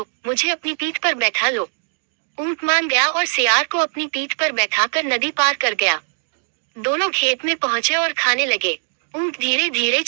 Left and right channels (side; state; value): left; silent; 63 dB below the other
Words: मुझे अपनी पीठ पर बैठा लो। ऊंट मान गया और सियार को अपनी पीठ पर बैठाकर नदी पार कर गया। दोनों खेत में पहुंचे और खाने लगे। ऊंट धीरे धीरे